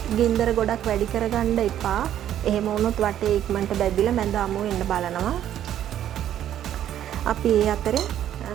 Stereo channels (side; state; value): left; quieter; 11.1 dB